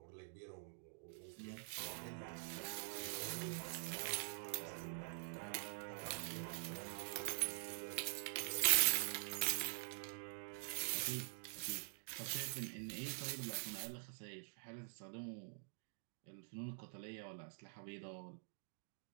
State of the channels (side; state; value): left; silent; digital silence